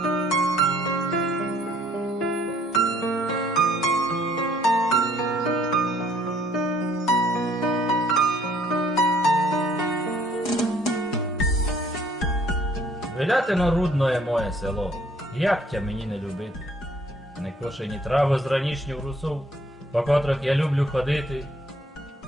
Велятино рудное моє село, як тя мені не любити? Не кошені трави з ранішніх русов, по котрих я люблю ходити.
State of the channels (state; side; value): normal; both; correlation 0.62